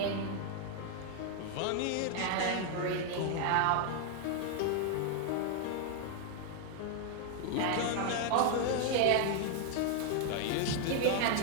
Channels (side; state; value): both; different; correlation 0.00